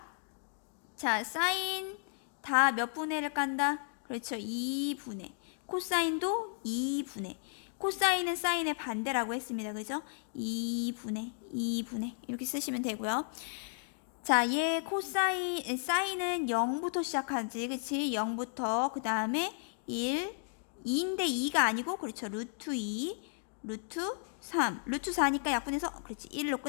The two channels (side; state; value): right; silent; 55 dB below the other